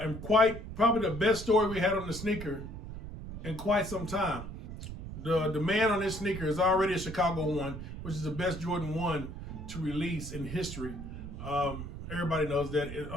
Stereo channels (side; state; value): right; noise; rumble, 9 dB below the sound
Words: probably the best story we had on the sneaker in quite some time. The demand on this sneaker is already a Chicago 1, which is the best Jordan 1 to release in history. Everybody knows that. The